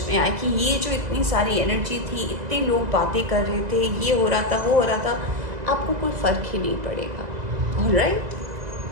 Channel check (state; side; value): late; left; 2.0 ms